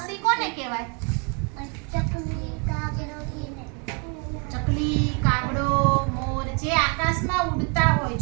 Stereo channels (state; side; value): quieter; left; 35.0 dB